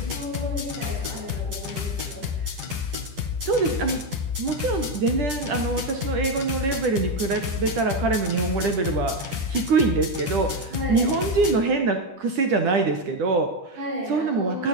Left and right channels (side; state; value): left; late; 10 ms